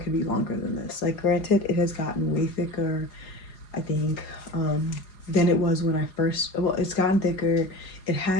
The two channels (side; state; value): right; late; 4.8 ms